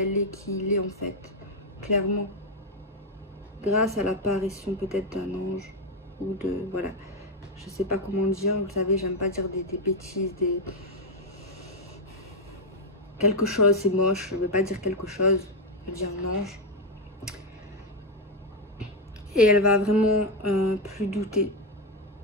est, qui il est en fait, clairement. Grâce à l'apparition peut-être d'un ange ou de, voilà, je sais pas comment dire, vous savez, j'aime pas dire des bêtises, quelque chose, c'est moche, je veux pas dire quelque chose, je veux dire un ange. Et elle va vraiment plus douter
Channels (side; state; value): both; normal; correlation 0.06